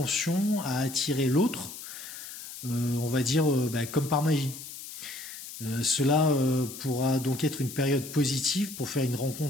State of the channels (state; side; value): noise; left; hiss, 12 dB below the sound